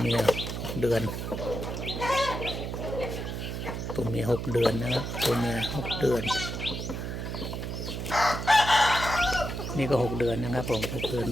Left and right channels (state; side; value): noise; right; hum, 5 dB below the sound